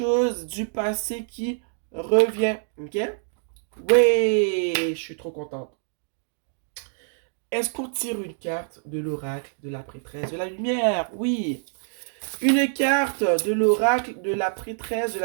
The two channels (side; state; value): left; silent; digital silence